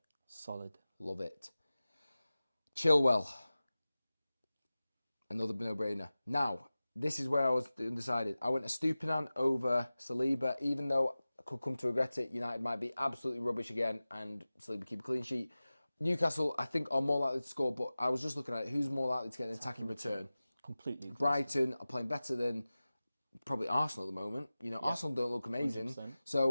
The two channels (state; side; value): inverted; both; correlation -0.97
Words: Solid. Love it. Chilwell. Another no-brainer. Now, this is where I was undecided. I went a Stupinan over Saliba, even though I could come to regret it. United might be absolutely rubbish again and Saliba keep a clean sheet. Newcastle, I think, are more likely to score, but I was just looking at it. Who's more likely to get an attacking return? Completely. Brighton are playing better than probably Arsenal at the moment. You know, Arsenal don't look amazing. 100%.